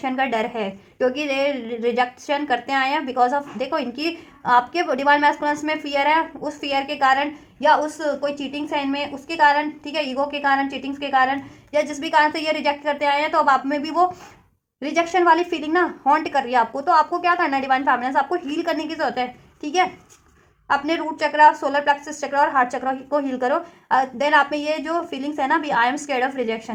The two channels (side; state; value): both; identical; correlation 1.00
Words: का डर है, क्योंकि ये रिजेक्शन करते आए हैं बिकॉज ऑफ, देखो इनकी आपके डिवाइन मैस्कुलिन्स में फियर है, उस फियर के कारण, या उस कोई चीटिंग है इनमें उसके कारण, ठीक है, ईगो के कारण, चीटिंग्स के कारण, या जिस भी कारण से ये रिजेक्ट करते आए हैं, तो अब आप में भी वो रिजेक्शन वाली फीलिंग ना हॉन्ट कर रही है आपको। तो आपको क्या करना है, डिवाइन फैमिलीज आपको हील करने की जरूरत है, ठीक है। अपने रूट चक्रा, सोलर प्लेक्सस चक्रा और हार्ट चक्रा को हील करो। देन आप में ये जो फीलिंग्स है ना भी, I am scared of